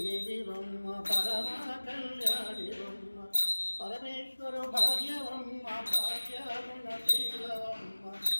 పరమా కళ్యాణివమ్మ పరమేశ్వరు భార్యవమ్మ భాగ్యాగుణ శీలవమ్మ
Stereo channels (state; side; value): inverted; both; correlation -1.00